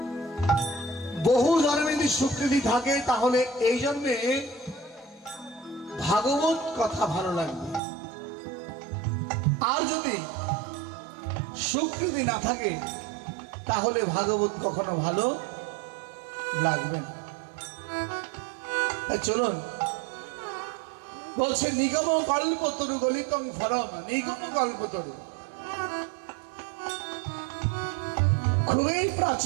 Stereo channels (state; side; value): drops out; left; at 7.8 s